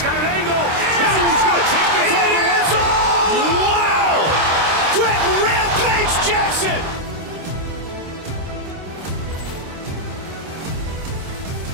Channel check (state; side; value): late; left; 26 ms